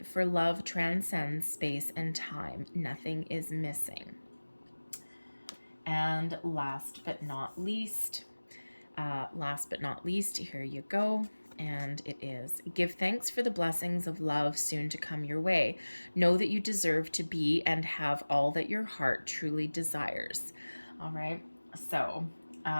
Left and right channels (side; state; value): both; inverted; correlation -1.00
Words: for love transcends space and time. Nothing is missing. And last but not least, here you go. And it is, give thanks for the blessings of love soon to come your way. Know that you deserve to be and have all that your heart truly desires. All right, so